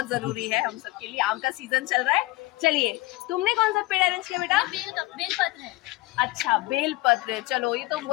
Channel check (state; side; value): quieter; right; 20.3 dB